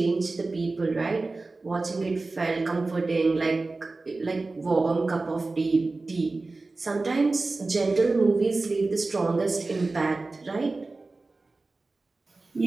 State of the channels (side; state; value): left; quieter; 3.5 dB